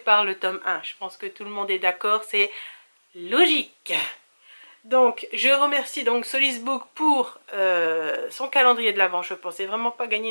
le tome 1. Je pense que tout le monde est d'accord, c'est logique. Donc, je remercie donc Solisbook pour son calendrier de l'Avent. Je ne pensais vraiment pas gagner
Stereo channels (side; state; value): both; inverted; correlation -1.00